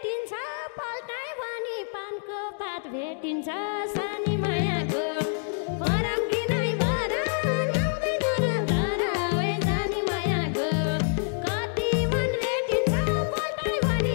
पल्टाइ भनी पानको पात भेटिन्छ सानी मायाको परम किनाइ मारा लाउँदै धरा धरा ओए सानी मायाको कति मन रेटिन्छ पल्टाइ भनी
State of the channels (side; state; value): right; silent; digital silence